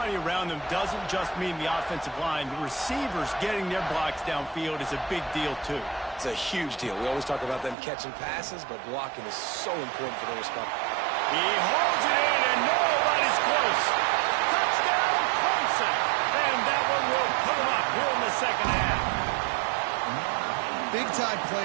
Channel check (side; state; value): left; drops out; at 7.8 s